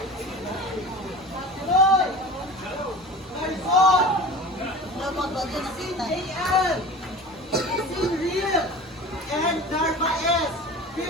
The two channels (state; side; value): normal; both; correlation 0.36